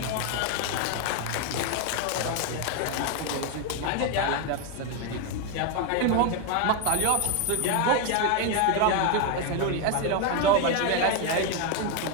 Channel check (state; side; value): different; both; correlation 0.01